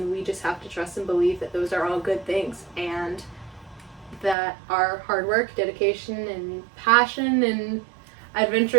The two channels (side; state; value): left; drops out; at 4.4 s